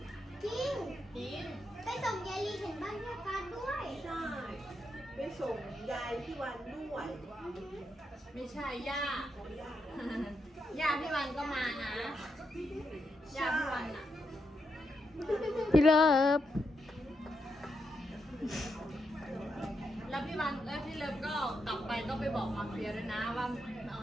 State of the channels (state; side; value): normal; both; correlation 0.83